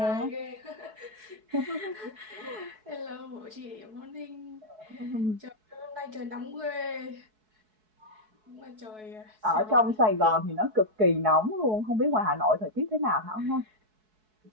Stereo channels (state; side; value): late; left; 4.6 ms